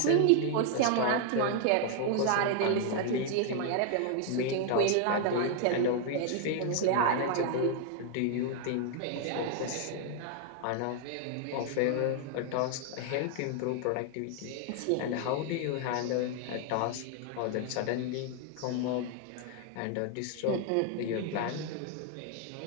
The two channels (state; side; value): different; both; correlation 0.00